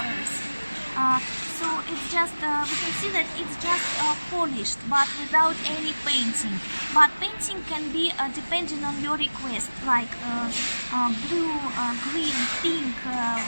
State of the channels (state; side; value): inverted; both; correlation -1.00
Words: So it's just, we can see that it's just polished, but without any painting. But painting can be depending on your request, like blue, green, pink,